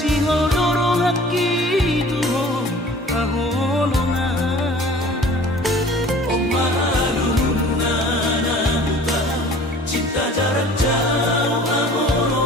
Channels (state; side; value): normal; both; correlation 0.47